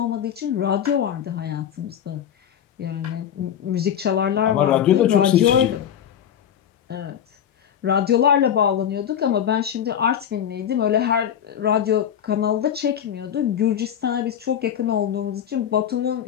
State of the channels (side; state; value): right; quieter; 9.4 dB